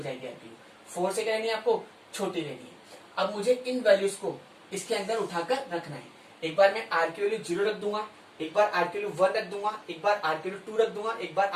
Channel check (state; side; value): identical; both; correlation 1.00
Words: आपकी 4 से क्या लेनी है, आपको छोटी लेनी है। अब मुझे इन वैल्यूज को इसके अंदर उठाकर रखना है। एक बार मैं R की वैल्यू 0 रख दूंगा, एक बार R की वैल्यू 1 रख दूंगा, एक बार R की वैल्यू 2 रख दूंगा, एक बार